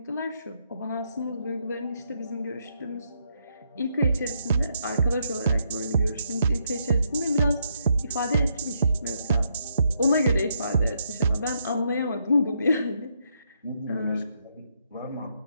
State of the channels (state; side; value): inverted; both; correlation -0.76